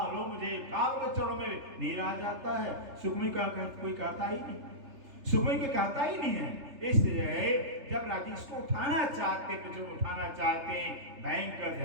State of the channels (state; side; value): late; left; 3.3 ms